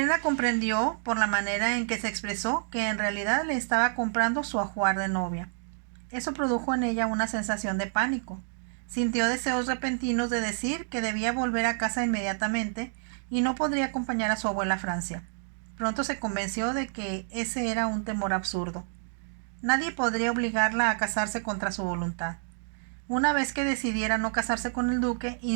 comprendió, por la manera en que se expresó, que en realidad le estaba comprando su ajuar de novia. Eso produjo en ella una sensación de pánico. Sintió deseos repentinos de decir que debía volver a casa inmediatamente y no podría acompañar a su abuela a Francia. Pronto se convenció de que ese era un temor absurdo. Nadie podría obligarla a casarse contra su voluntad. Una vez que decidiera no casarse con el duque,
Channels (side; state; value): left; silent; digital silence